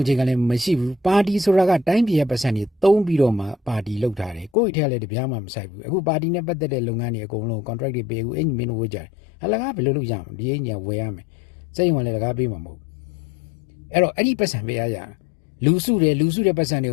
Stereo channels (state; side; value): drops out; right; at 4.5 s